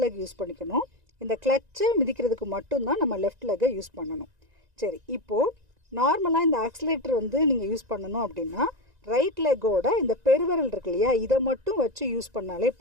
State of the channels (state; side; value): late; left; 1.9 ms